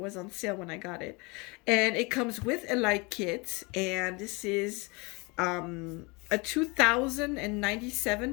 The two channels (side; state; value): right; quieter; 27.7 dB